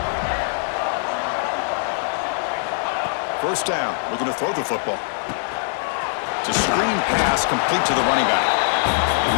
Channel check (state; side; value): silent; right; 64 dB below the other